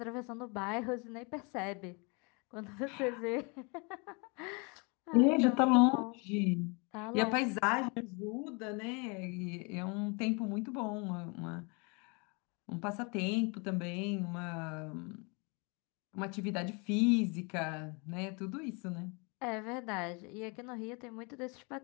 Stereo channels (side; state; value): right; quieter; 31.5 dB